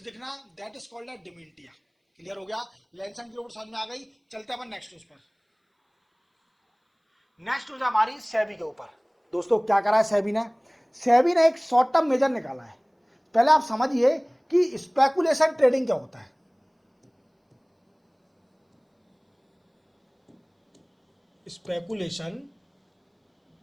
दिखना, that is called dementia. Clear हो गया, लैंसेट की रिपोर्ट समझ में आ गई। चलते हैं अपन नेक्स्ट न्यूज पर। नेक्स्ट न्यूज हमारी सेबी के ऊपर। दोस्तों क्या करा है सेबी ने, सेबी ने एक शॉर्ट टर्म मेजर निकाला है। पहले आप समझिए कि स्पेकुलेशन ट्रेडिंग क्या होता है। स्पेकुलेशन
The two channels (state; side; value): identical; both; correlation 1.00